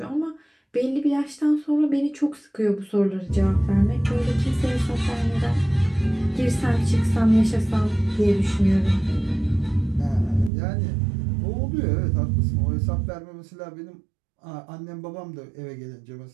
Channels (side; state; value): left; drops out; at 10.5 s